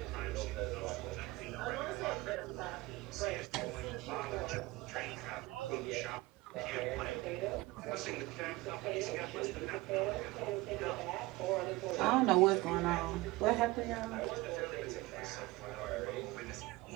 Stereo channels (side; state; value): left; quieter; 20.8 dB